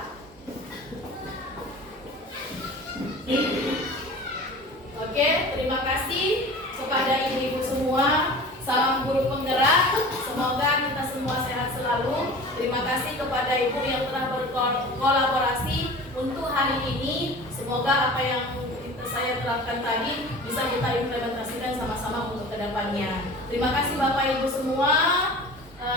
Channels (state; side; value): normal; both; correlation 0.39